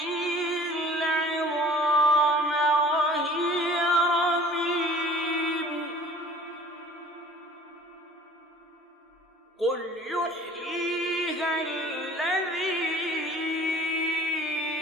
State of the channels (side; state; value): both; normal; correlation 0.48